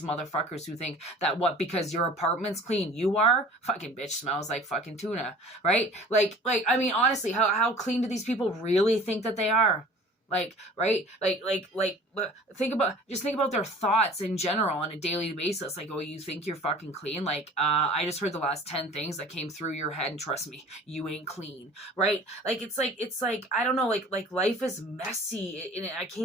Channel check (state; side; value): normal; both; correlation 0.46